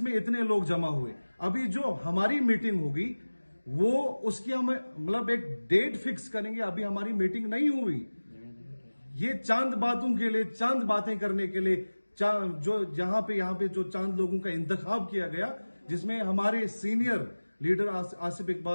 में इतने लोग जमा हुए। अभी जो हमारी मीटिंग होगी वो उसकी हम मतलब एक डेट फिक्स करेंगे। अभी हमारी मीटिंग नहीं हुई। ये चांद बातों के लिए, चांद बातें करने के लिए जो यहाँ पे जो चांद लोगों का इंतखाब किया गया, जिसमें हमारे सीनियर लीडर आसिफ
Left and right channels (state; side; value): inverted; both; correlation -1.00